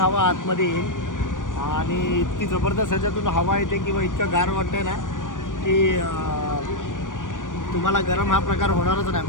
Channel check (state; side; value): late; right; 0.88 ms